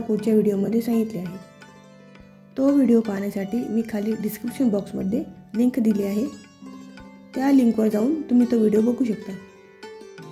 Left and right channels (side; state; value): both; identical; correlation 1.00